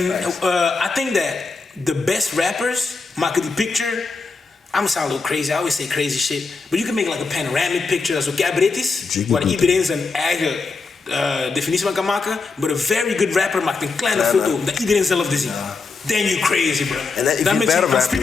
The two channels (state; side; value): quieter; right; 4.3 dB